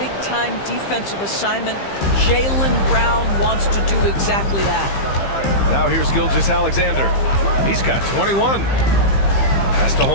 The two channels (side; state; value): right; late; 15 ms